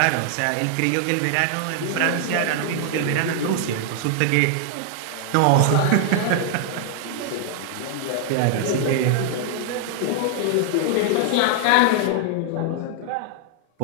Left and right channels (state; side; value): different; both; correlation 0.00